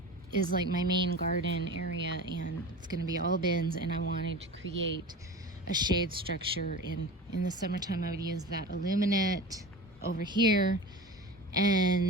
is like my main garden area, and it's going to be all bins, and I wanted to create a shade structure. In the summertime I would use that aluminate over here,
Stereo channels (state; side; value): normal; both; correlation 0.33